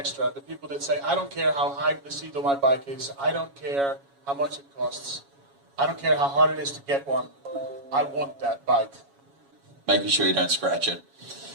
The people that say, I don't care how high the seat on my bike is. I don't care how much it costs. I don't care how hard it is to get one. I want that bike. Making sure you don't scratch it.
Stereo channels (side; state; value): left; late; 7.2 ms